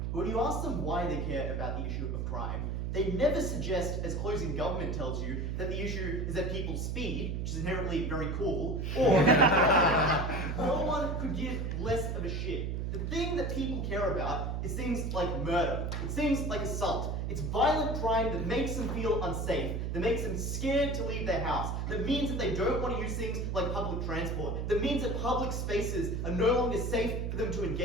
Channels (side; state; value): right; noise; hum, 1 dB below the sound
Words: But when you ask them why they care about the issue of crime, they never suggest, as closing government tells you, that the issue is that people speed, which is inherently very cool, or no one could give less of a shit. The thing that people care about is things like murder. It's things like assault. It's violent crime that makes them feel unsafe, that makes them scared to leave their house, that means that they don't want to use things like public transport, that means that public spaces are no longer safe for them to